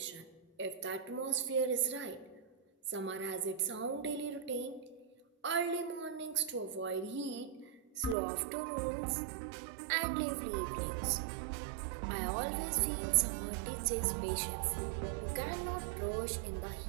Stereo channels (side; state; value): left; drops out; at 8.2 s